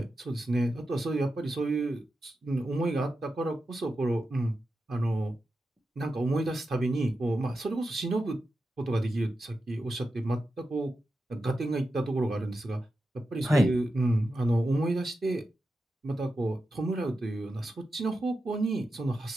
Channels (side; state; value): both; normal; correlation 0.90